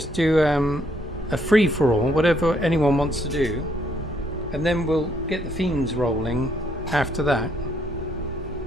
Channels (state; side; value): noise; right; hum, 17 dB below the sound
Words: do a free for all, whatever anyone wants to do, and then we'll get the themes rolling after that.